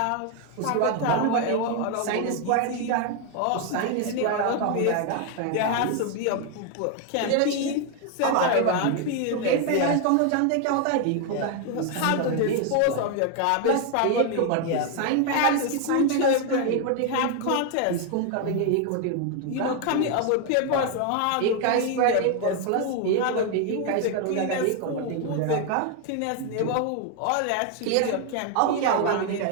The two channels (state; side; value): different; both; correlation 0.01